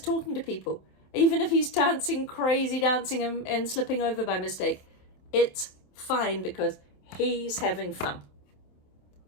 talking to people, even if he's crazy dancing and slipping over by mistake, it's fine because he's having fun.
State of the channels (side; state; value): right; late; 27 ms